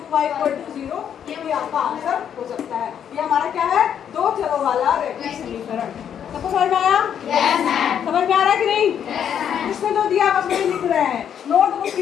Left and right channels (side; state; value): right; quieter; 8.8 dB